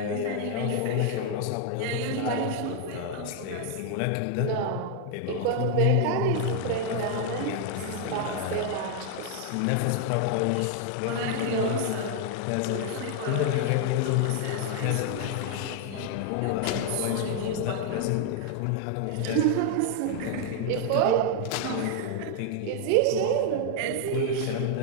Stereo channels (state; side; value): different; both; correlation 0.00